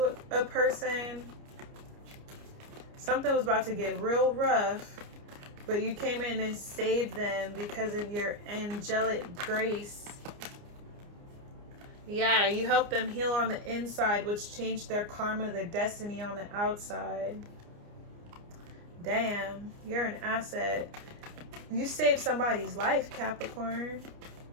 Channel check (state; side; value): late; left; 29 ms